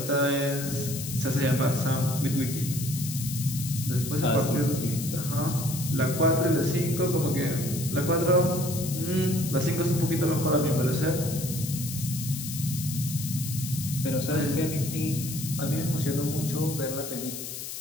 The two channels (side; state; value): left; noise; hiss, 8 dB below the sound